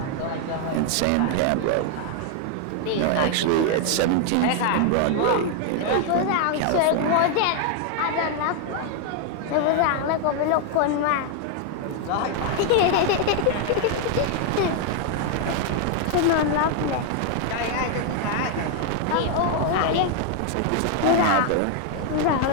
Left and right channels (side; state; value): both; different; correlation 0.00